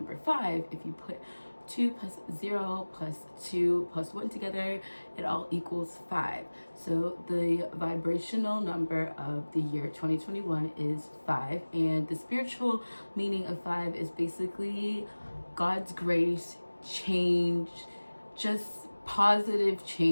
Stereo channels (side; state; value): both; inverted; correlation -1.00